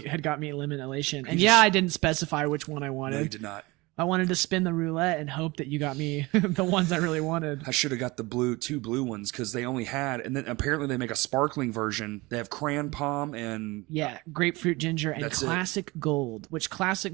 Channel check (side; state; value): left; quieter; 23.0 dB